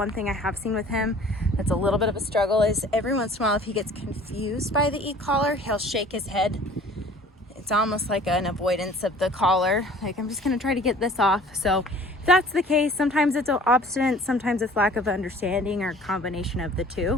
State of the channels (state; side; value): normal; both; correlation 0.49